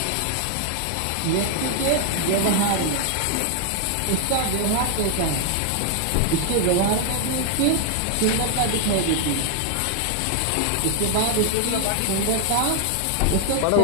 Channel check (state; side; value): different; both; correlation 0.00